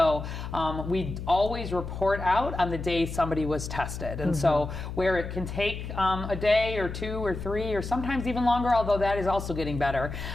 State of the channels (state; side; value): noise; left; hum, 7 dB below the sound